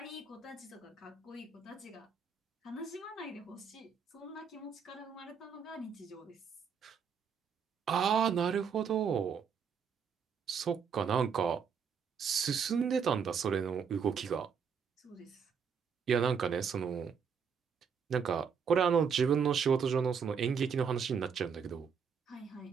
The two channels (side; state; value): left; quieter; 6.5 dB